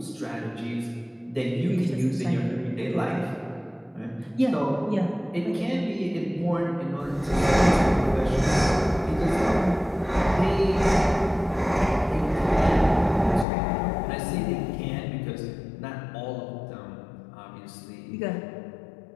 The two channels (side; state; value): right; drops out; at 13.5 s